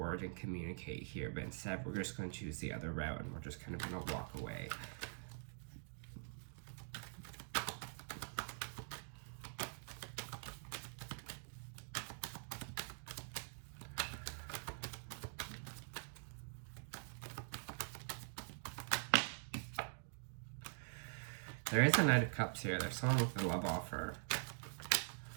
and communicate here. But instead, we're just going to choose the other route and we're just kind of going to walk away. There is a Knight of Cups here. There's someone with a love offer.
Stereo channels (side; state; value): left; silent; digital silence